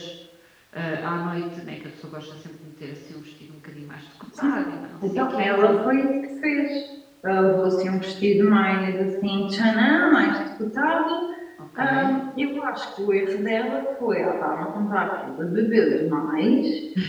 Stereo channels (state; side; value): identical; both; correlation 1.00